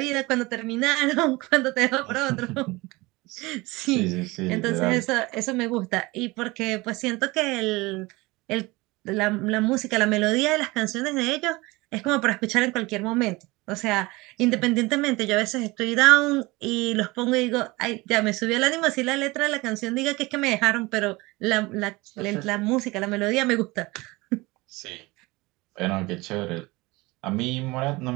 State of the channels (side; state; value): left; quieter; 22.5 dB